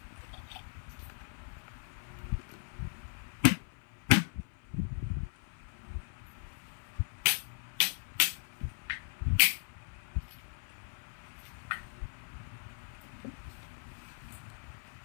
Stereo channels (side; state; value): right; silent; 53 dB below the other